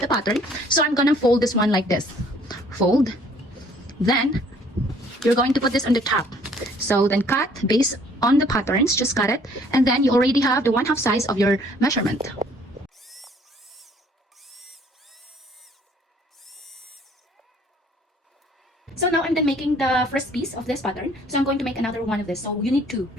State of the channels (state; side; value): normal; both; correlation 0.59